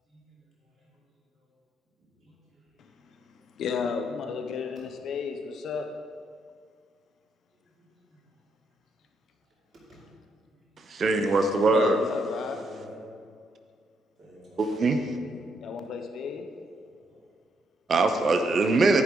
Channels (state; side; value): normal; both; correlation 0.76